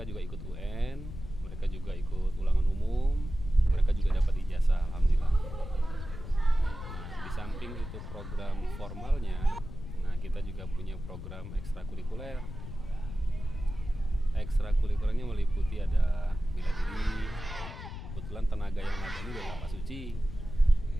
juga ikut UN, mereka juga ikut ulangan umum, mereka juga dapat ijazah alhamdulillah. Nah, di samping itu program formalnya, nah kita juga punya program ekstrakurikuler. Ekstrakurikulernya meliputi ada bela diri. Kebetulan tenaga yang ada ini adalah Pak Suci.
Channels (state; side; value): noise; left; rumble, 10 dB below the sound